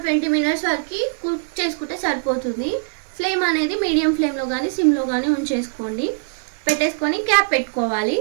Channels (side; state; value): left; silent; digital silence